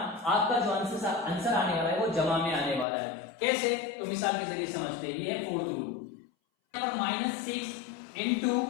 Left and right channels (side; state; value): right; drops out; at 2.9 s